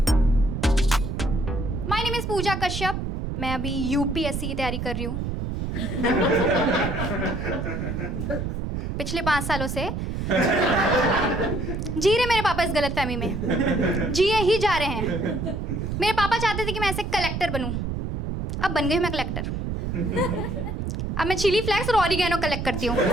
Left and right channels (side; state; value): right; noise; rumble, 3 dB below the sound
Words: माय नेम इज पूजा कश्यप। मैं अभी यूपीएससी की तैयारी कर रही हूँ। पिछले 5 सालों से जी रहे मेरे पापा इस गलतफहमी में, जिए ही जा रहे हैं। मेरे पापा चाहते थे कि मैं ऐसे कलेक्टर बनूं, अब बन गई मैं कलेक्टर। अब मैं चिली फ्लेक्स और ऑरिगेनो कलेक्ट करती हूँ।